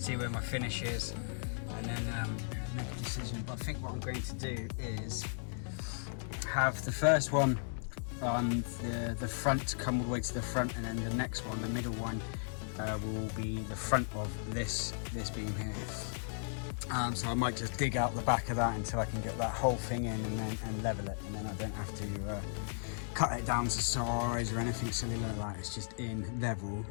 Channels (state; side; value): silent; right; digital silence